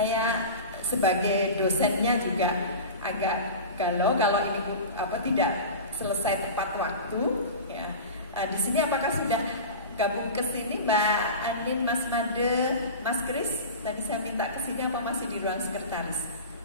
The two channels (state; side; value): inverted; both; correlation -0.31